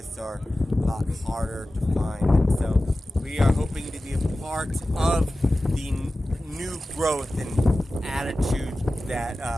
are a lot harder to find. And so we are hoping to be a part of the new growth and attitude that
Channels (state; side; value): normal; both; correlation 0.95